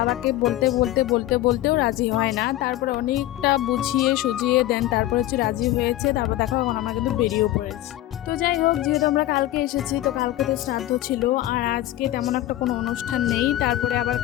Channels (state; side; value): quieter; right; 15.0 dB